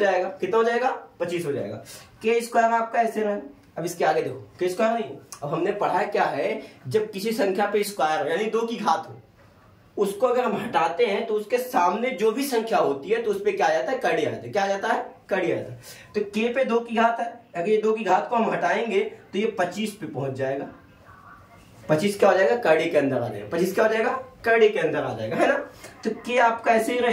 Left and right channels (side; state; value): both; identical; correlation 1.00